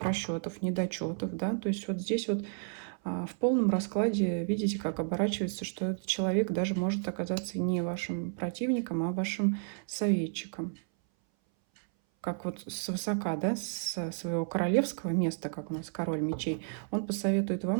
недочетов, да, то есть вот здесь вот в полном раскладе видите, как оборачивается, что этот человек даже может оказаться не вашим противником, а вашим советчиком. Как вот свысока, да, с своего королевского места, как у нас король мечей, он посоветует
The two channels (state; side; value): silent; left; 57 dB below the other